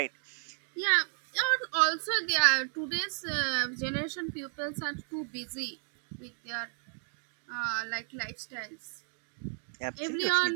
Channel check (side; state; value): left; silent; 56 dB below the other